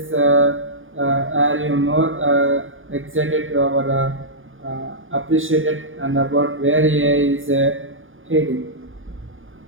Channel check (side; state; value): left; late; 0.58 ms